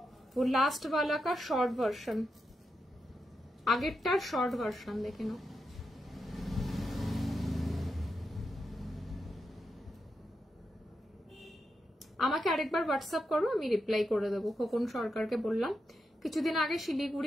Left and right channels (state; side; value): normal; both; correlation 0.86